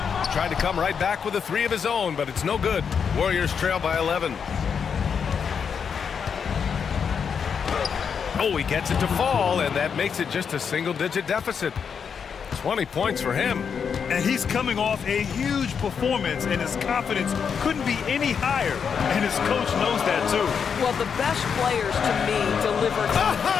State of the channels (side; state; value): right; quieter; 6.7 dB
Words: Tried to come right back with a three of his own, but it's no good. Warriors trail by 11. Oh, he gets it to fall, and that makes it just a single-digit deficit. 20 points for him. And he's coming off a huge performance, and his confidence couldn't be any higher. And his coach knows that, too. Well, the best players, to me, deliver.